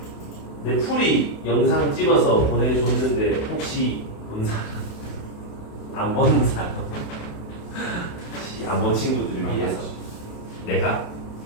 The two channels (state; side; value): late; right; 28 ms